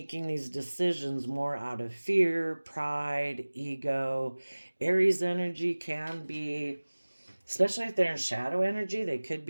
these decisions more out of fear, pride, ego. Aries energy can be, especially if they're in shadow energy, they could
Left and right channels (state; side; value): inverted; both; correlation -1.00